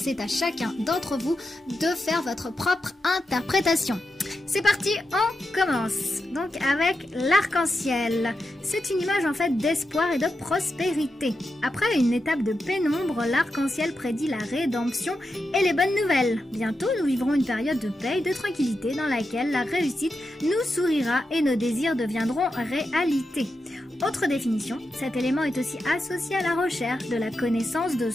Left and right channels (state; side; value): normal; both; correlation 0.88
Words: à chacun d'entre vous de faire votre propre interprétation. C'est parti, on commence. Donc avec l'arc-en-ciel. C'est une image en fait d'espoir et de prospérité. Après une étape de pénombre, l'arc-en-ciel prédit la rédemption et les bonnes nouvelles. Bientôt, nous vivrons une période de paix et de tranquillité dans laquelle la réussite nous sourira et nos désirs deviendront réalité. Autre définition, cet élément est aussi associé à la recherche de la connaissance de